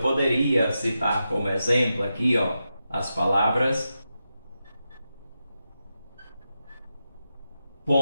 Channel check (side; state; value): both; inverted; correlation -0.89